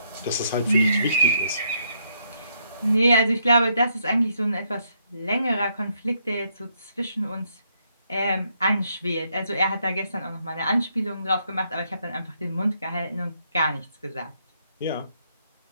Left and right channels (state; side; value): inverted; both; correlation -0.74